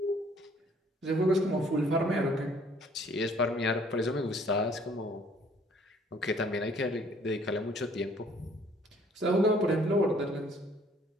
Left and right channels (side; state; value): both; normal; correlation 0.59